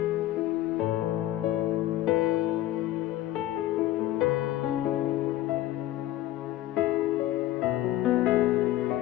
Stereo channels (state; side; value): quieter; right; 14.6 dB